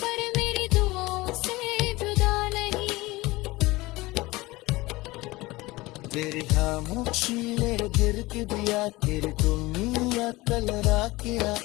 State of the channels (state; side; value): quieter; right; 20.8 dB